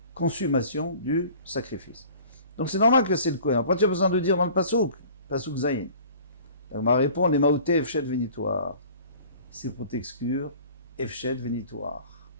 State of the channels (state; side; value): inverted; both; correlation -0.47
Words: consommation du sacrifice. Donc c'est normal que c'est le Kohen. Après, tu as besoin de dire dans le pasuk zayin. On m'a répondu, les maouté efshet vénitoire. C'est pour t'exclure efshet vénitoire.